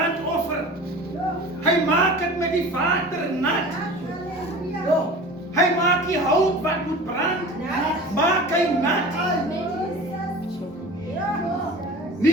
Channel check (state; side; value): normal; both; correlation 0.38